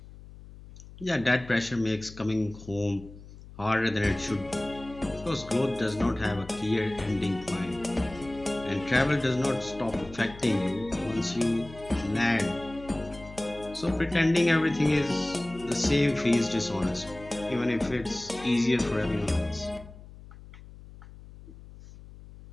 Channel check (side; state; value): left; noise; hum, 18 dB below the sound